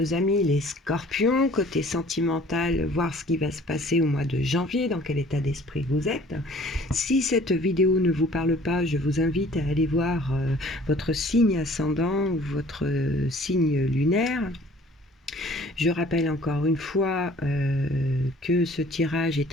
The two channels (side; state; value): both; normal; correlation 0.52